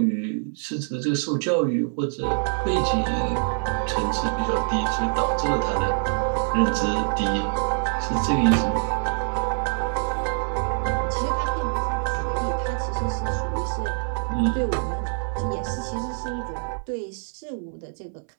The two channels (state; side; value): silent; left; 62 dB below the other